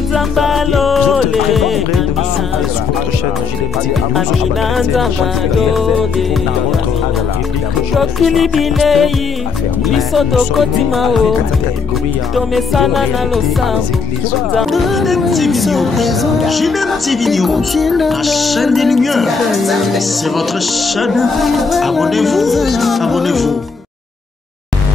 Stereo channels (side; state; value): right; quieter; 4.9 dB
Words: Zambalole, Amina Zambalole, Tokili Bilei, Bisoto Kotimao, Tomesana na Losambo. JDM TV News, la chaîne des lumières. C'est votre chaîne. Abonnez-vous, abonnez-vous.